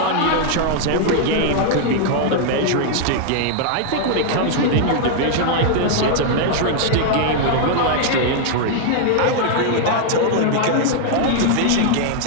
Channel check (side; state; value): both; different; correlation 0.00